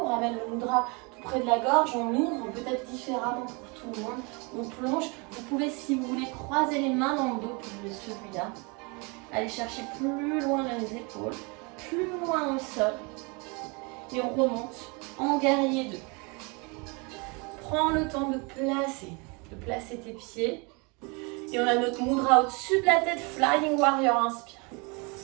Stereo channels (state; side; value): quieter; left; 30.3 dB